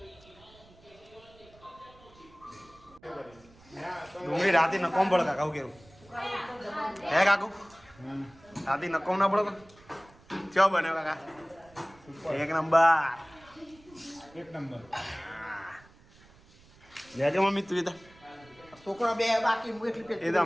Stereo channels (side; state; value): right; noise; rumble, 26 dB below the sound